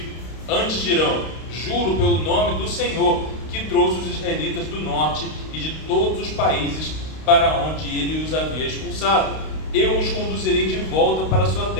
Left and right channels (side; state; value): right; late; 32 ms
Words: Antes dirão, juro pelo nome do Senhor que trouxe os israelitas do norte e de todos os países para onde ele os havia expulsado. Eu os conduzirei de volta para a sua